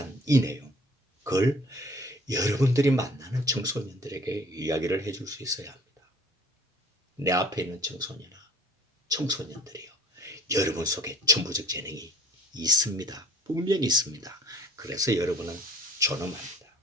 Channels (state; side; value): normal; both; correlation 0.51